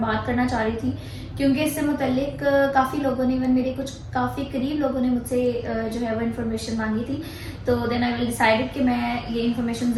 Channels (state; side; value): identical; both; correlation 1.00